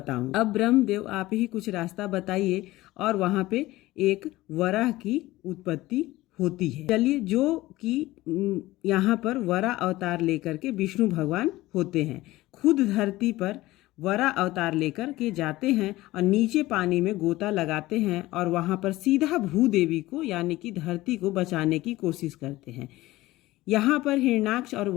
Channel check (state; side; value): quieter; right; 17.9 dB